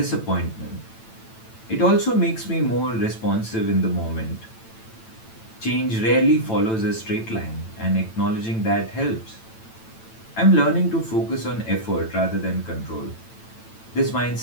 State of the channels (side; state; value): right; late; 9.0 ms